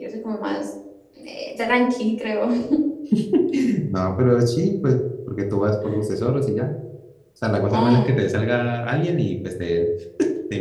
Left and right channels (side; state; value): both; identical; correlation 1.00